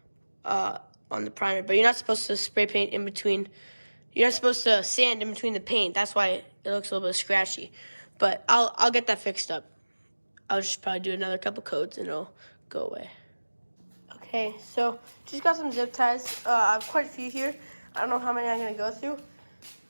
on the primer. But you're not supposed to spray paint in between. You're not supposed to sand in between the paint. That's why it looks a little bit scratchy. But I'll get that fixed up. I'll just probably do another couple coats and it'll go away. Okay, so just got some zip ties. I have quite a few here. I don't know how many I'm gonna go through.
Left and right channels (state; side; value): inverted; both; correlation -1.00